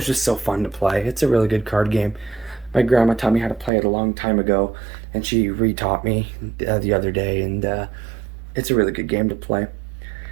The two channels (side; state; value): left; drops out; at 3.7 s